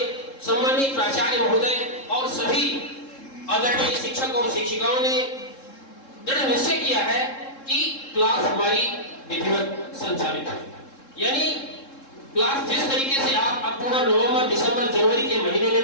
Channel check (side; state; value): right; late; 3.7 ms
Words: सम्मानित प्राचार्य महोदय और सभी आदरणीय शिक्षक और शिक्षिकाओं ने दृढ़ निश्चय किया है कि क्लास हमारी विधिवत संचालित है। यानी क्लास जिस तरीके से आप अक्टूबर, नवंबर, दिसंबर, जनवरी के महीने